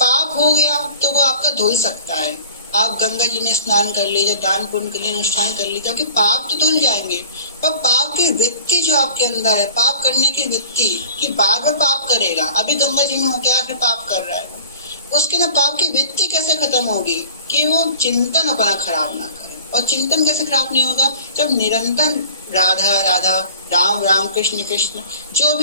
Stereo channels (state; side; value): inverted; both; correlation -0.46